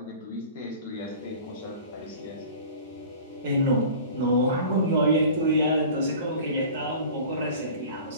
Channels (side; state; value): both; inverted; correlation -0.41